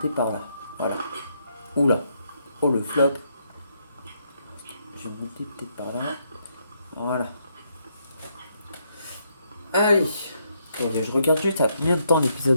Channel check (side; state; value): both; inverted; correlation -0.75